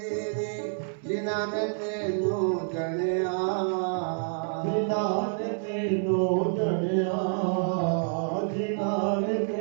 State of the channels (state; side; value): silent; left; 59 dB below the other